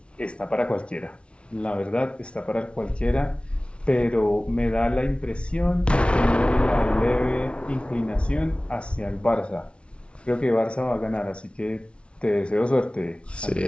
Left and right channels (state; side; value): late; right; 0.059 ms